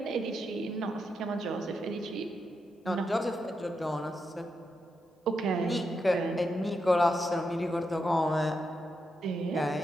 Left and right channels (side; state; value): both; normal; correlation 0.84